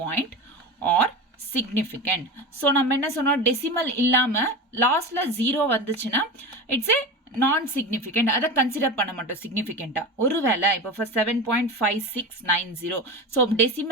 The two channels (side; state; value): both; normal; correlation 0.26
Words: point or significant so நம்ம என்ன சொன்னோம் decimal இல்லாம லாஸ்ட்ல 0 வந்துச்சுன்னா it's ஏ நான் சிக்னிஃபிகண்ட் அதை கன்சிடர் பண்ண மாட்டோம் சிக்னிஃபிகண்டா ஒருவேளை இப்போ ஃபர்ஸ்ட் 7.5690 ஸோ